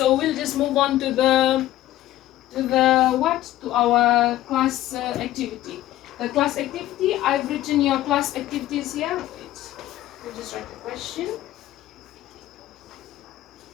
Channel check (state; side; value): quieter; right; 14.4 dB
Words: we'll just move on to our class activity. The class activity, I've written your class activities here. Wait, we'll just write the question.